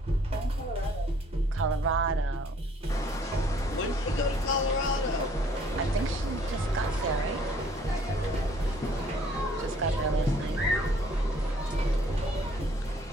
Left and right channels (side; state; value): both; normal; correlation 0.59